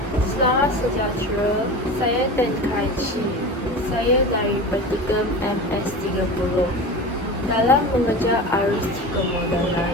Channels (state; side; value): normal; both; correlation 0.30